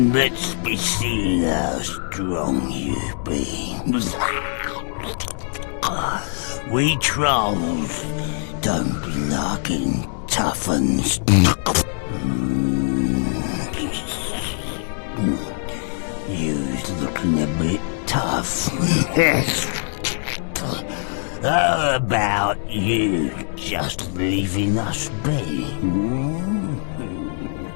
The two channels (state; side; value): silent; right; digital silence